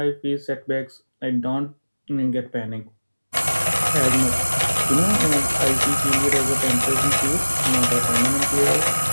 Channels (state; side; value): inverted; both; correlation -1.00